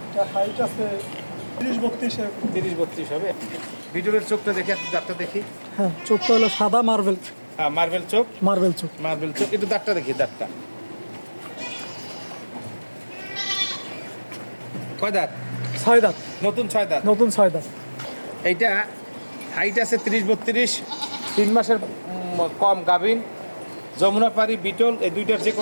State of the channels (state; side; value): inverted; both; correlation -1.00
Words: এটা হাইট আছে 30-32 এরকম। 30-32 হবে। বিটলের চোখটা দেখি, দাঁতটা দেখি। হ্যাঁ, চোখটা হলো সাদা মার্বেল। হ্যাঁ, মার্বেল চোখ। মার্বেল চোখ। একটু দাঁতটা দেখি, দাঁতটা কয় দাঁত? 6 দাঁত। নতুন 6 দাঁত। নতুন 6 দাঁত। এইটা হাইট আছে 30-32, 3 মাসের কম গাভিন, যমুনাপাড়ি বিটল, এই দুইটার যে